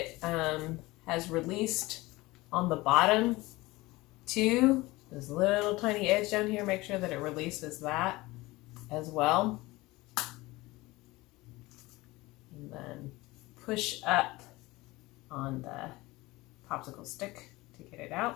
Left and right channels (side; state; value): right; quieter; 20.7 dB